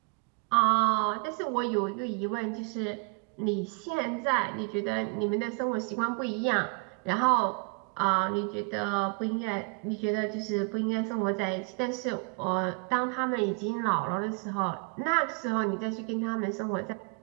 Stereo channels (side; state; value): left; quieter; 33.5 dB